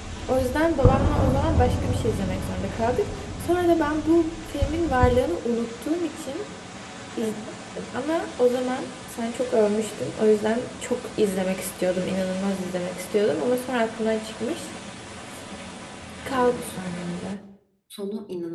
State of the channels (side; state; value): both; identical; correlation 1.00